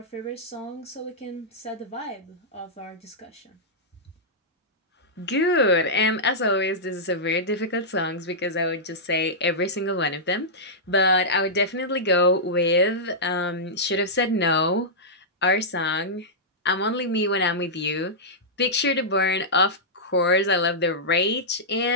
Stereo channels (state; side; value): normal; both; correlation -0.11